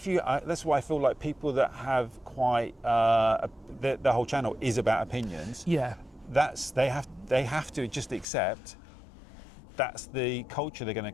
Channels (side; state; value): right; drops out; at 8.2 s